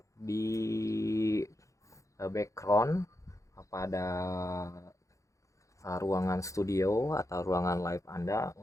di background pada ruangan studio atau ruangan live Anda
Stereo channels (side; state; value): right; late; 0.15 ms